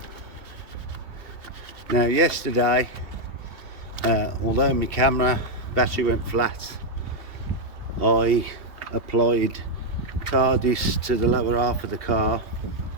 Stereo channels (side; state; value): left; late; 2.8 ms